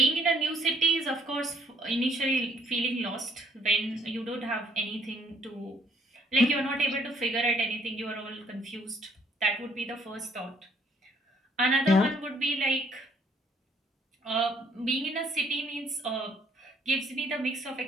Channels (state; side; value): normal; both; correlation 0.64